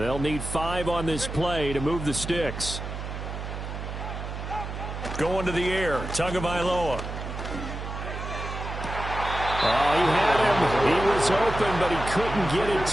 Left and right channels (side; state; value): right; noise; hum, 7 dB below the sound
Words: need 5 on this play to move the sticks. Going to the air, Tagovailoa. Oh, he had him. He was open, but he couldn't get it